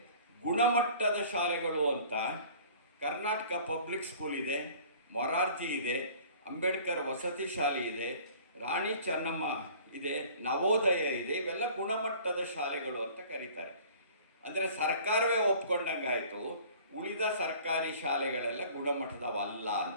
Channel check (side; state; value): both; inverted; correlation -0.48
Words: ಗುಣಮಟ್ಟದ ಶಾಲೆಗಳು ಅಂತ ಕರ್ನಾಟಕ ಪಬ್ಲಿಕ್ ಸ್ಕೂಲ್ ಇದೆ, ಮೊರಾರ್ಜಿ ಇದೆ, ಅಂಬೇಡ್ಕರ್ ವಸತಿ ಶಾಲೆ ಇದೆ, ರಾಣಿ ಚೆನ್ನಮ್ಮ ಇದೆ, ನವೋದಯ ಇದೆ. ಇವೆಲ್ಲ ಗುಣಮಟ್ಟದ ಶಾಲೆಗಳು ಅಂತ ಕರೀತಾರೆ. ಅಂದರೆ ಸರ್ಕಾರವೇ ಒಪ್ಕೊಂಡಂಗಾಯಿತು ಉಳಿದ ಸರ್ಕಾರಿ ಶಾಲೆಗಳೆಲ್ಲ ಗುಣಮಟ್ಟದವಲ್ಲ